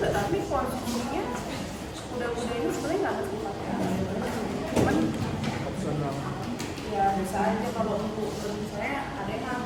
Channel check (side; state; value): both; identical; correlation 1.00